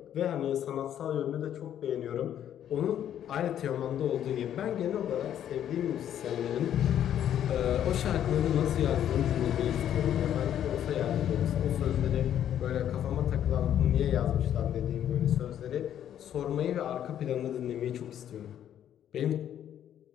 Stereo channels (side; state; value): right; quieter; 10.4 dB